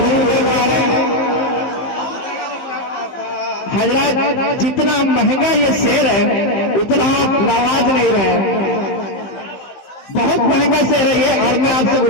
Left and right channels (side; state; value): right; late; 15 ms